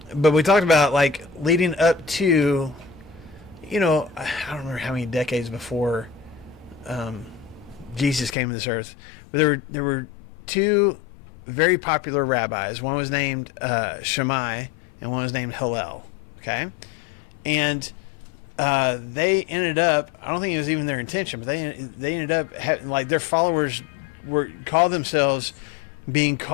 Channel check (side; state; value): right; drops out; at 8.3 s